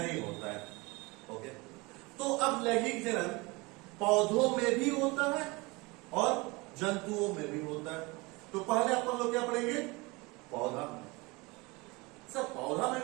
होता है। ओके, तो अब लैंगिक जनन पौधों में भी होता है और जंतुओं में भी होता है। तो पहले अपन लोग क्या पढ़ेंगे? पौधा में। सर पौधा में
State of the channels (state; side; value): quieter; left; 24.9 dB